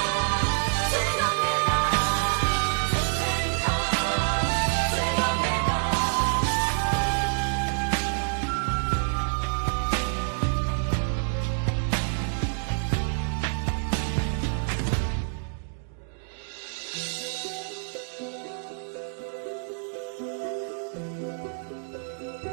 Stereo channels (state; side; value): silent; left; digital silence